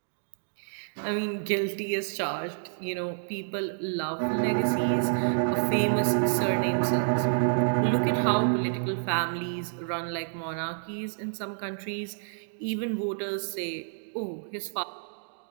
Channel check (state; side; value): silent; left; digital silence